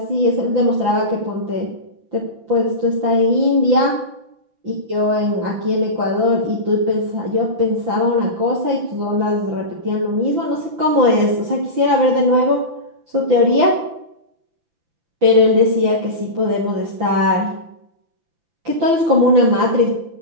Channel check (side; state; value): left; late; 5.9 ms